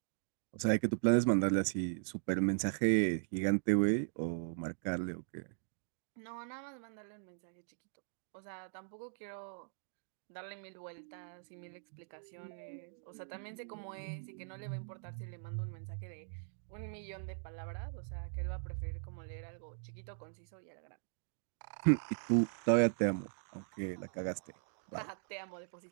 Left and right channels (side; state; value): left; silent; digital silence